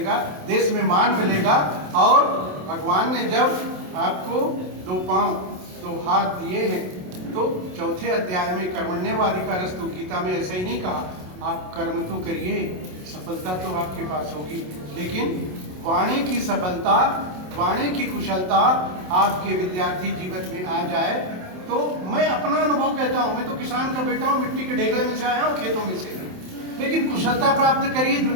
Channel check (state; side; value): late; left; 27 ms